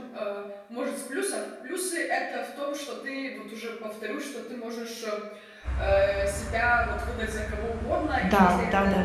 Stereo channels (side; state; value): both; identical; correlation 1.00